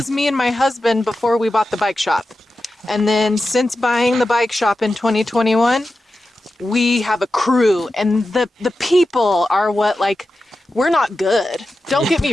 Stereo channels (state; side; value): normal; both; correlation 0.92